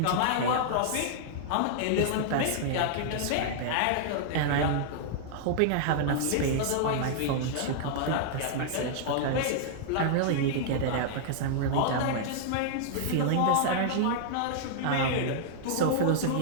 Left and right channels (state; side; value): different; both; correlation -0.01